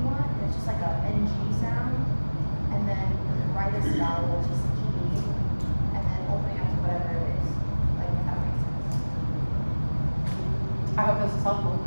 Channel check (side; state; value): both; inverted; correlation -1.00